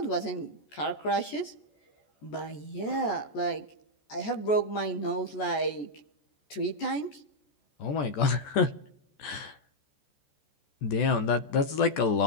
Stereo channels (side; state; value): right; late; 14 ms